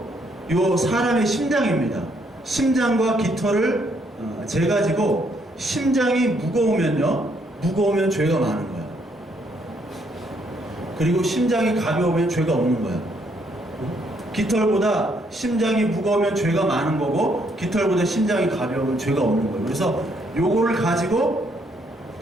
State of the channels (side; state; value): both; normal; correlation 0.71